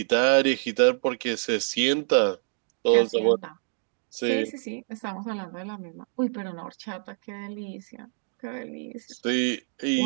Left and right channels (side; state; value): left; silent; digital silence